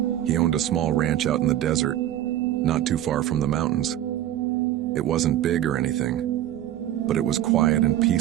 He owned a small ranch out in the desert, not too far from the mountains. It wasn't big or anything, but it was quiet and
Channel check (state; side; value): quieter; left; 12.4 dB